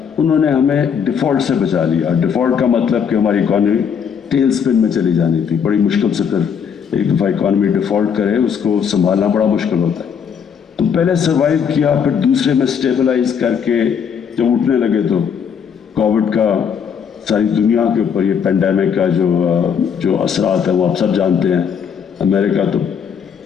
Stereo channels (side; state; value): right; quieter; 7.3 dB